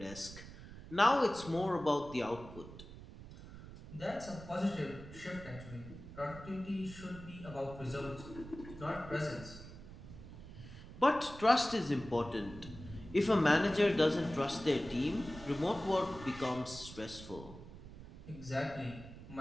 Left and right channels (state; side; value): noise; right; rumble, 14 dB below the sound